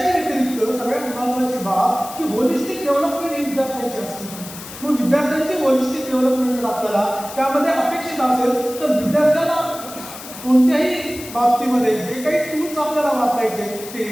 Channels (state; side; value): noise; left; hiss, 13 dB below the sound